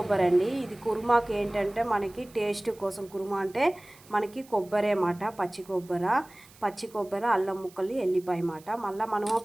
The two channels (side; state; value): right; noise; hiss, 25 dB below the sound